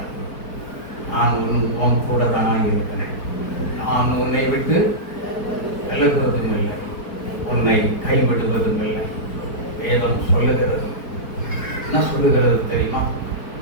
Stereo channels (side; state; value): right; late; 4.5 ms